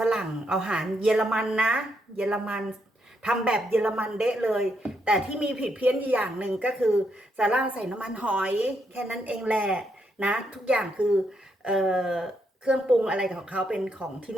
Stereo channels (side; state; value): both; normal; correlation 0.78